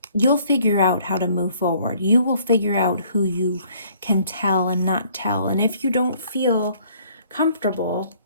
You'll figure out how to move forward. You will figure out who you can tell and not tell. And if you don't feel comfortable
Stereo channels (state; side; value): inverted; both; correlation -0.60